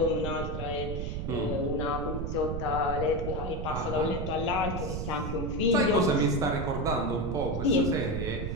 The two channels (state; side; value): noise; right; rumble, 4 dB below the sound